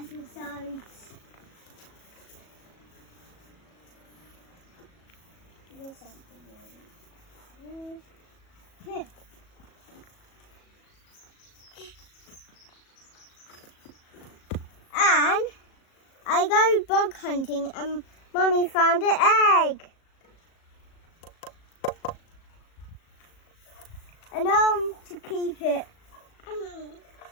There's something really. Here. And I go bug hunting and Mummy found an egg. And I want to keep it.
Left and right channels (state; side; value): late; right; 37 ms